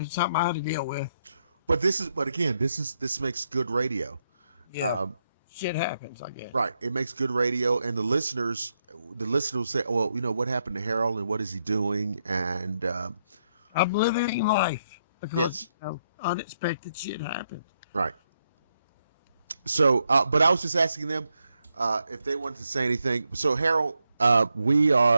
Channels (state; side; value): inverted; both; correlation -0.80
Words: something I had to deal with. But this makes good radio. Yeah. Shit happens, I guess. Right. It makes good radio, and the listeners will say, well, what happened to Harold and what is he doing? And I'm living life because yes. Unexpected shit happens. Right. So, but I was just asking them if they wanted to say anything. So, Harold, we